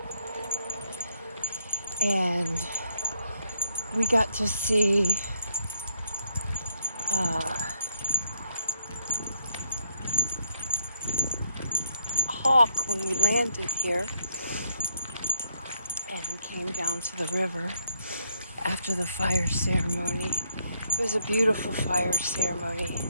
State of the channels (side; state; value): both; inverted; correlation -0.74